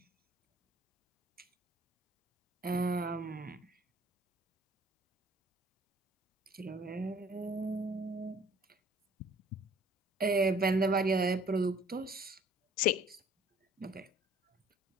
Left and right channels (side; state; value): both; normal; correlation 0.55